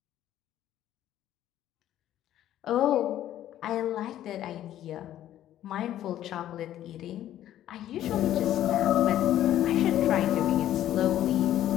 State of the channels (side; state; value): right; quieter; 12.3 dB